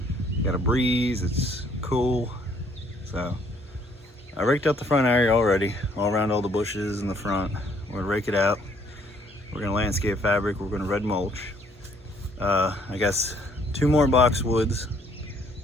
Got a breeze, it's cool. So I raked out the front area already, all around all the bushes in the front. We're gonna rake it out. We're gonna landscape fabric, we're gonna red mulch. I guess 2 more boxwoods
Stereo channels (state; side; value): normal; both; correlation 0.64